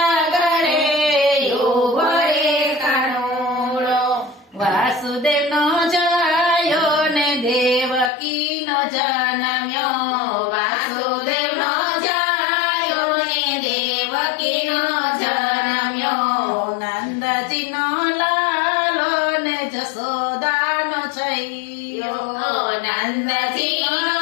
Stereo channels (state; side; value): drops out; right; at 8.1 s